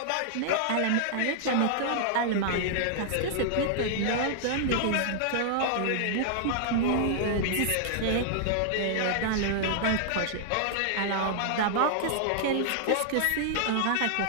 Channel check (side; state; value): both; different; correlation -0.01